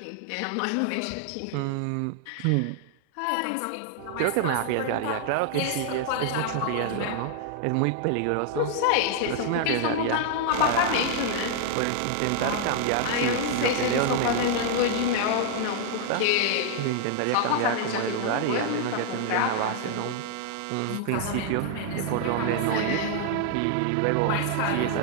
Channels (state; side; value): different; both; correlation 0.00